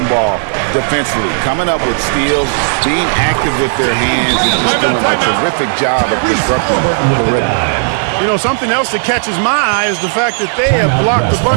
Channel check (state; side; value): silent; left; digital silence